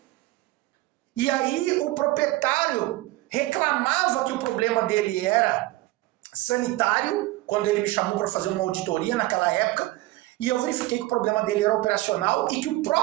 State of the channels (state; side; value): quieter; left; 18.5 dB